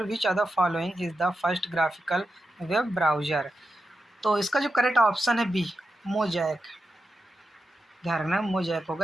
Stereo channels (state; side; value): normal; both; correlation 0.89